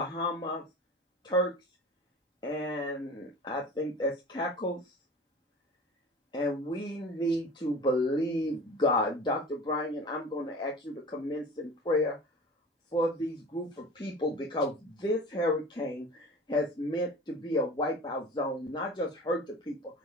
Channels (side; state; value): both; normal; correlation 0.38